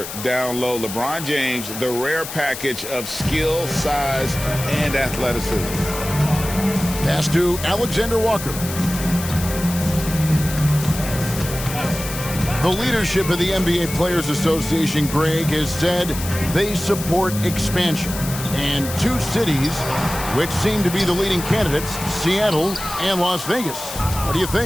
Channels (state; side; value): noise; left; hiss, 9 dB below the sound